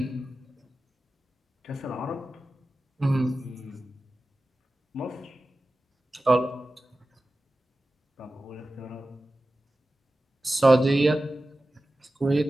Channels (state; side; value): normal; both; correlation 0.95